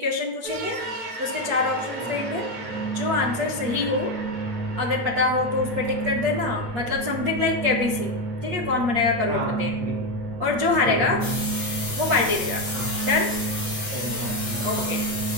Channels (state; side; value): late; left; 8.4 ms